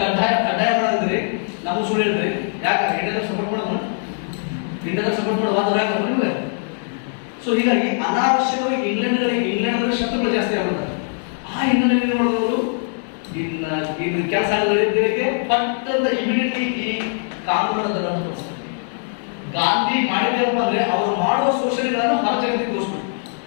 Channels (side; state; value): right; silent; 62 dB below the other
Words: ಮಾಡಿದ್ರಿ ನಾವು ಸುಳ್ಳು ಹೇಳ್ರಿ. ಯಾಕೆ ಇಂಡಿಯಾದಾಗ ಸಪೋರ್ಟ್ ಮಾಡೋದು, ಇಂಡಿಯಾದಾಗ ಸಪೋರ್ಟ್ ಮಾಡೋ ವಾದ ಯಾಕೆ ನಿಮಗೆ. ಸೊ ಹೀಗಾಗಿ ಅನಾವಶ್ಯಕವಾಗಿ ಇಂಗ್ಲೆಂಡ್ ಶತ್ರುಗಳು ಜಾಸ್ತಿ ಆಗ್ಬಿಡ್ತಾರೆ. ಆ ಹಿನ್ನೆಲೆಯಲ್ಲಿ ಏನು ಮಾಡಿದವರು ಇನ್ನು ಕೆಲಸ ಆಗಲಿದ್ದಕ್ಕೆ ಪಟ್ಟಂತ ಇಮಿಡಿಯೇಟ್ಲಿ ಈ ಕಾನೂನನ್ನು ರದ್ದು ತೋರಿಸ್ತಾರೆ. ಗಾಂಧಿ ಮಾಡಿದ್ದೇನಪ್ಪ ಅಂದ್ರೆ ಅವರು ಮಾಡುವ ಶೋಷಣೆಗಳನ್ನು ಹೊರ ಜಗತ್ತಿಗೆ ತೋರಿಸ್ಬೇಕು.